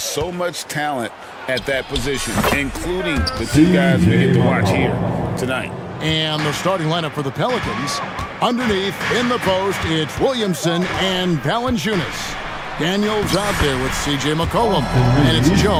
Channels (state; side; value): identical; both; correlation 1.00